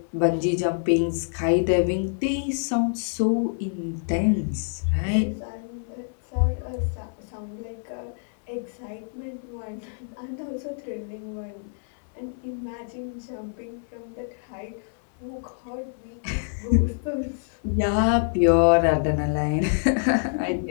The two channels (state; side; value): silent; right; 61 dB below the other